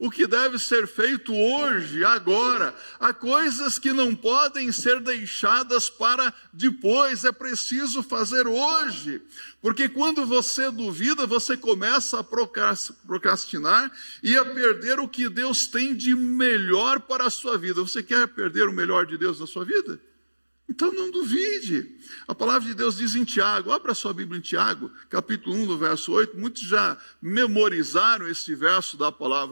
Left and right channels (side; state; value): both; inverted; correlation -1.00